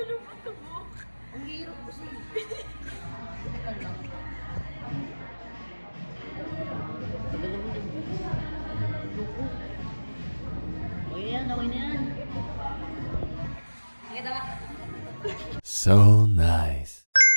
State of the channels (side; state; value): both; inverted; correlation -1.00